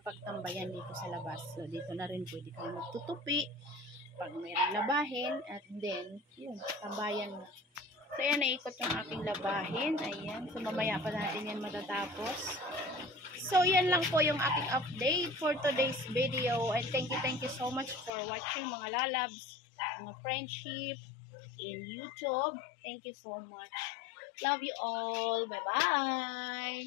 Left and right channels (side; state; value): right; drops out; at 18.1 s